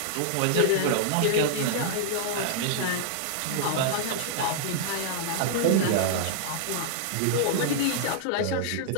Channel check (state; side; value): different; both; correlation -0.01